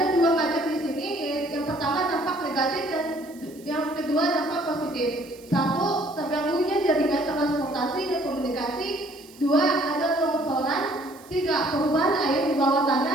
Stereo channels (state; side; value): noise; right; hiss, 24 dB below the sound